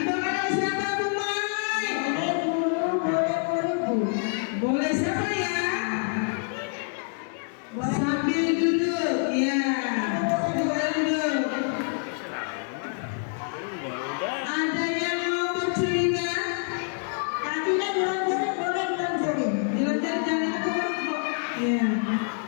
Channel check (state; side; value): silent; right; 57 dB below the other